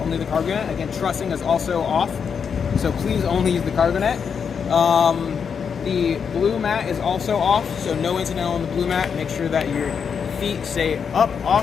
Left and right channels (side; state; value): right; quieter; 6.7 dB